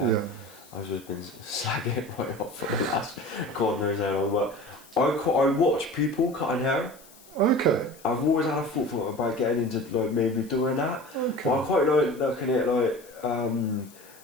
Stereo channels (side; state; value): left; noise; hiss, 24 dB below the sound